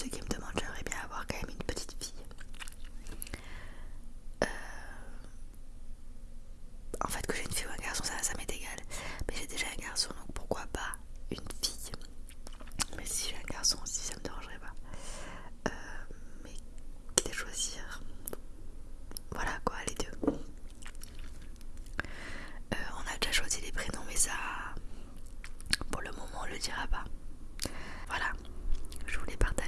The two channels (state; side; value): identical; both; correlation 1.00